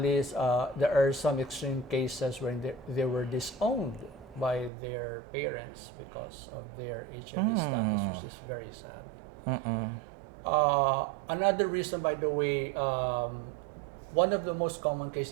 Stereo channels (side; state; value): left; drops out; at 4.7 s